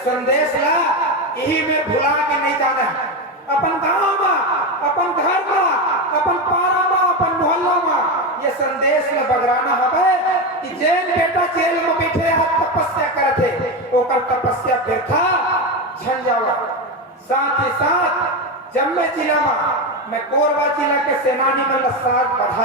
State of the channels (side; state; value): both; normal; correlation 0.14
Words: संदेश ला यही में भुला के नहीं जाना है अपन गांव में अपन घर में अपन पारा में अपन मोहल्ला में ये संदेश में बगराना हवे कि जेल बेटा जेल में बैठे हाथ तपस्या करते ओकर तपस्या व्यर्था झन जावा। साथ ही साथ जम्मे जिला में मैं कोरबा जिला के सेनानी में साथ